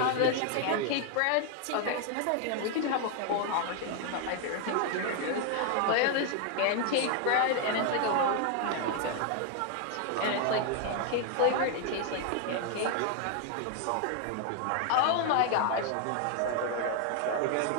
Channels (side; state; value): both; different; correlation 0.00